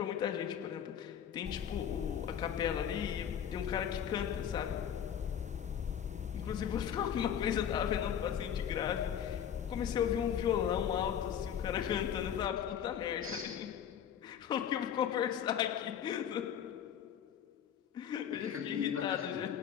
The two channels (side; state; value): right; quieter; 9.0 dB